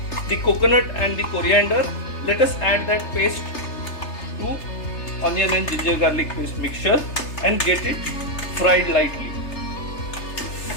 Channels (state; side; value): late; right; 3.3 ms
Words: the coconut and the coriander. Let us add that paste to onion and ginger garlic paste mixture and get it fried lightly.